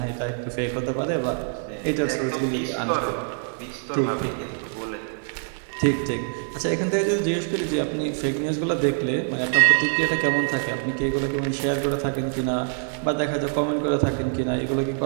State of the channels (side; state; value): left; silent; digital silence